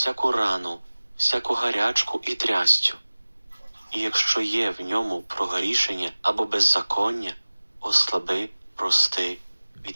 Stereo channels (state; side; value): inverted; both; correlation -1.00